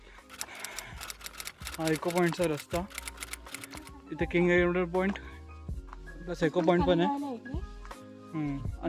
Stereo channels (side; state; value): both; identical; correlation 1.00